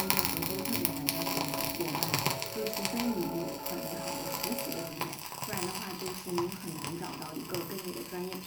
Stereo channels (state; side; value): identical; both; correlation 1.00